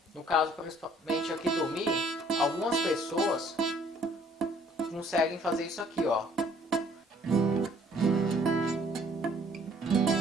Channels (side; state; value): both; normal; correlation 0.60